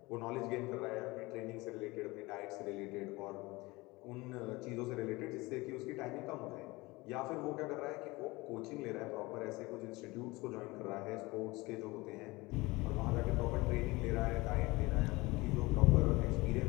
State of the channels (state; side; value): quieter; right; 22.3 dB